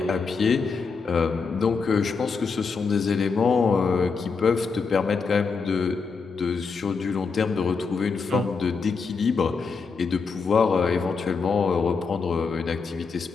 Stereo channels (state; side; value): quieter; right; 5.0 dB